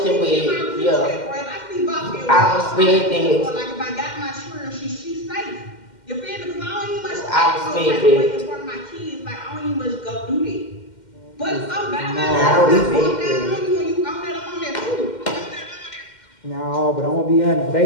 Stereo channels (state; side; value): late; right; 2.1 ms